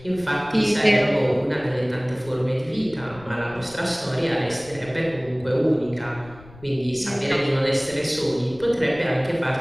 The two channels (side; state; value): left; noise; rumble, 21 dB below the sound